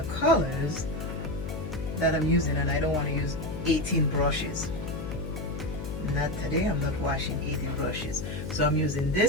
colors that I'm using, and I don't want to use 18 brushes. Not today. I'm not washing 18 brushes, so I'm using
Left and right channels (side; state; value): left; noise; hum, 6 dB below the sound